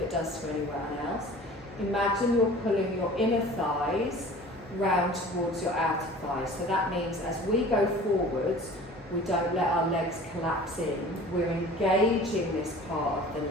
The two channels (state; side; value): normal; both; correlation 0.44